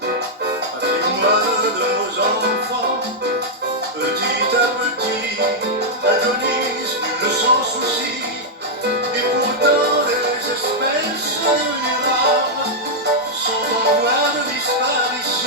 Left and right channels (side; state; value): both; normal; correlation -0.05